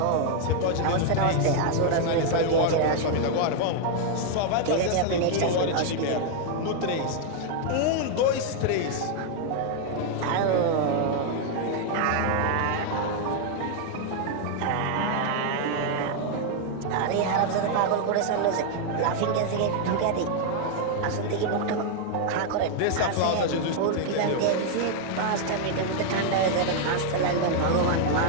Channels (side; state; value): both; different; correlation 0.00